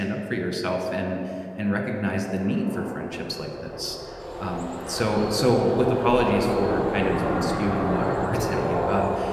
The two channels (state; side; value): identical; both; correlation 1.00